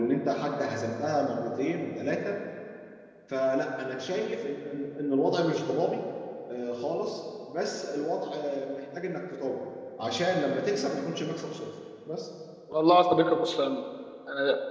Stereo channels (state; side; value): identical; both; correlation 1.00